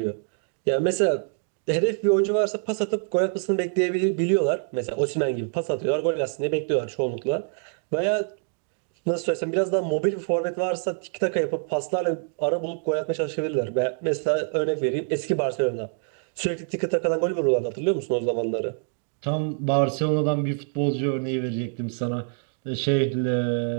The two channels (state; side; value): silent; left; 61 dB below the other